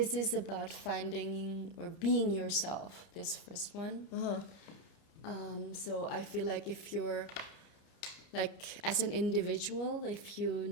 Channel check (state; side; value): late; right; 29 ms